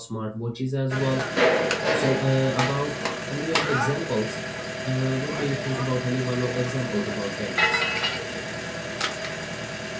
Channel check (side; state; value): both; identical; correlation 1.00